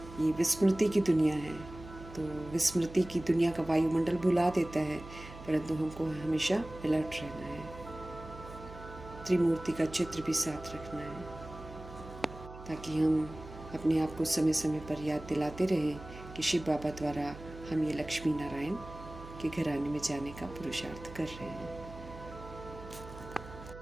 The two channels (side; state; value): right; noise; hum, 14 dB below the sound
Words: ये विस्मृति की दुनिया है, तो विस्मृति की दुनिया का वायुमंडल भुला देता है, परंतु हमको हमेशा अलर्ट रहना है। त्रिमूर्ति का चित्र भी साथ रखना है, ताकि हम अपने आप को समय समय पर याद दिलाते रहें कि शिव बाबा द्वारा हम ये लक्ष्मी नारायण के घराने में जाने का पुरुषार्थ कर रहे हैं।